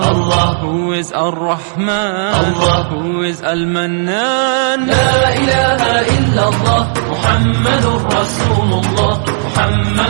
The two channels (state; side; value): silent; left; 72 dB below the other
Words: Who is Ar-Rahman? Allah. Who is Al-Mannan? La ilaha illallah, Muhammadur Rasulullah.